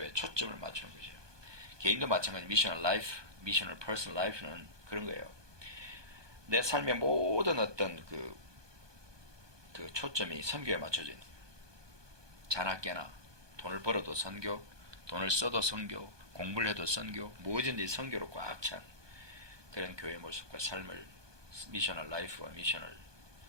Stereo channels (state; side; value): late; left; 1.2 ms